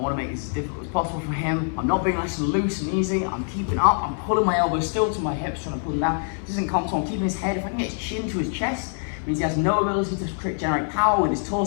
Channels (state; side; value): silent; right; 62 dB below the other